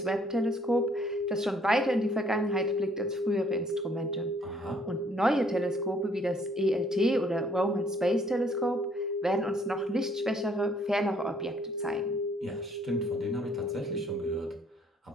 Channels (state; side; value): normal; both; correlation 0.63